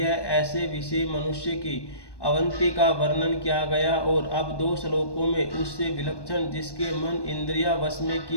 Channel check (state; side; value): late; right; 1.1 ms